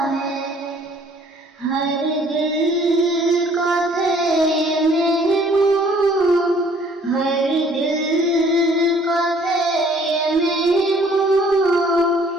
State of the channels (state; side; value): normal; both; correlation 0.58